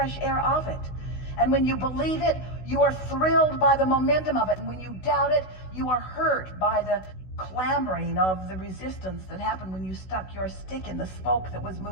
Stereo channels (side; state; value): right; late; 16 ms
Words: air of it. And when you believe it, you are thrilled by the momentum of it. And when you doubt it, you are hurt by the clamoring of the resistance that happened when you stuck your stick in the spoke that was